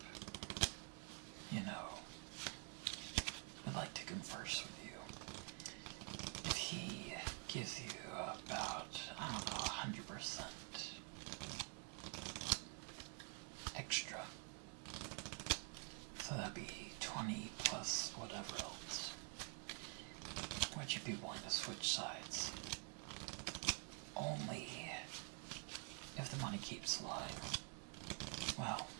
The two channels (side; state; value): left; quieter; 33.4 dB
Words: I'd like to converse with you. If he gives you about, 100% extra, so that'd be 20 plus whatever else, would you be willing to switch sides? Only if the money keeps lying. Well,